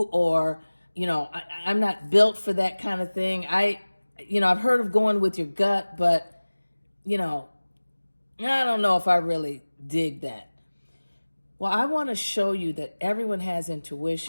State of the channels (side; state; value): both; inverted; correlation -1.00